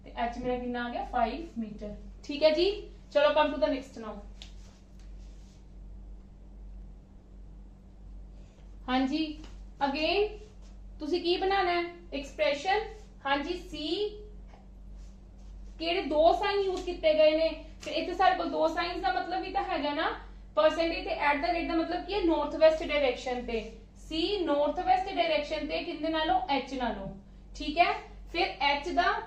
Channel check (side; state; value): both; identical; correlation 1.00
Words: ते h मेरा कितना आ गया 5 मीटर। ठीक है जी, चलो come to the next now. हाँ जी, अगेन तुसी की बनाना है एक्सप्रेशन। हाँ जी, सी केड़े दो साइन यूज किए गए ने, फिर इतने सारे को दो साइंस का मतलब भी तो है ना, परसेंटेज ते एट द रेट का मतलब की है नॉर्थ वेस्ट डायरेक्शन ते, सी नॉर्थ वेस्ट डायरेक्शन ते किंदे नालों एच नालों। ठीक है, फिर एच दा